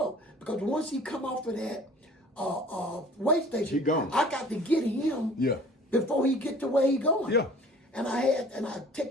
Because once he come off of that way station, he gone. I got to get him before he get to where he going. Yeah. And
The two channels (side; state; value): both; normal; correlation 0.48